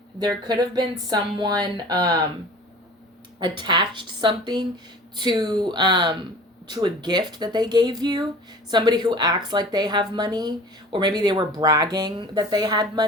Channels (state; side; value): normal; both; correlation 0.42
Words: there could have been someone attached something to a gift that they gave you. Somebody who acts like they have money, or maybe they were bragging that they had